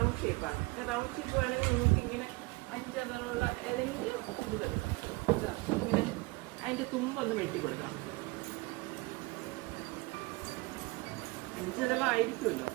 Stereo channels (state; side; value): quieter; left; 24.2 dB